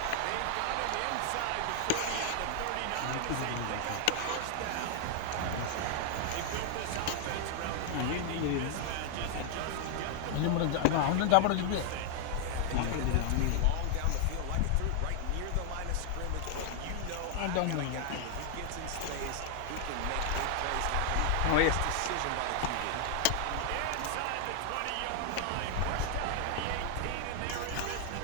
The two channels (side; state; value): both; different; correlation 0.00